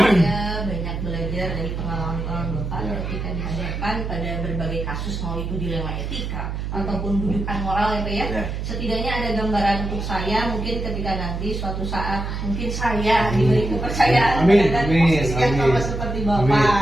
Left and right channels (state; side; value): noise; right; hum, 4 dB below the sound